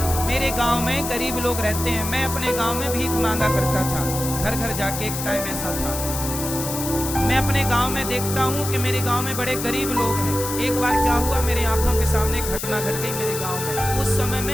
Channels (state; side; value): noise; left; hiss, 6 dB below the sound